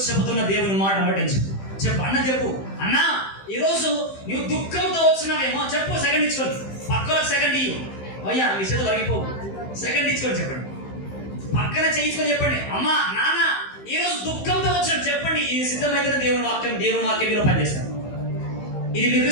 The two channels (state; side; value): late; right; 15 ms